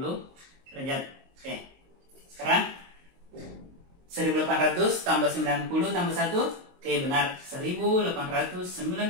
derajat. Oke, sekarang 1800 tambah 90 tambah 1, oke benar,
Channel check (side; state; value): left; late; 22 ms